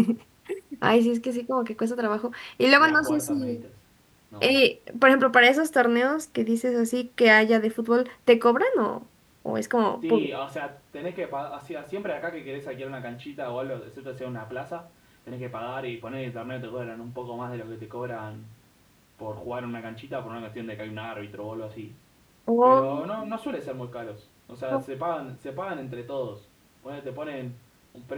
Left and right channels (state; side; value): identical; both; correlation 1.00